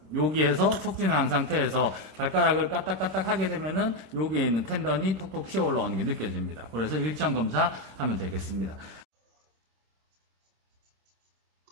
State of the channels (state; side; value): late; left; 26 ms